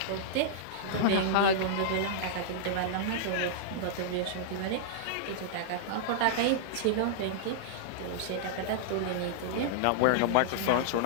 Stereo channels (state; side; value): different; both; correlation -0.02